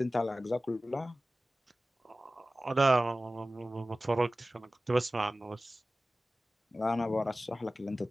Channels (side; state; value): both; normal; correlation 0.96